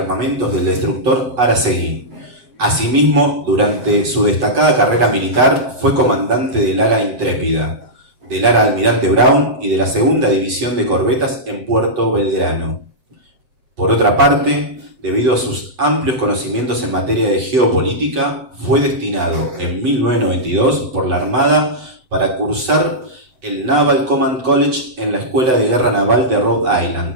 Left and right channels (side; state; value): left; late; 7.9 ms